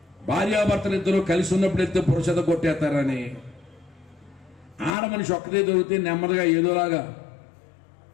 భార్యాభర్తలు ఇద్దరు కలిసి ఉన్నప్పుడు ఇద్దరు పురుషత కొట్టేస్తారని, ఆడ మనిషి ఒక్కదే దొరికితే నెమ్మదిగా ఏదోలాగా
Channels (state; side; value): drops out; right; at 5.0 s